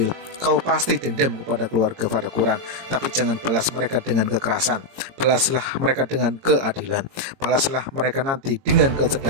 Kau pasti dendam kepada keluarga Fatakuran, tapi jangan balas mereka dengan kekerasan. Balaslah mereka dengan keadilan. Balaslah mereka nanti dengan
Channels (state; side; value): late; left; 22 ms